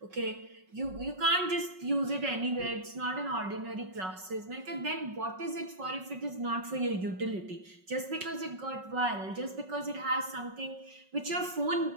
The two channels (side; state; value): left; late; 5.4 ms